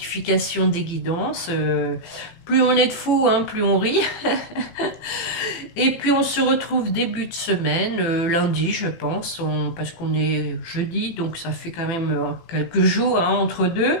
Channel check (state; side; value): late; right; 18 ms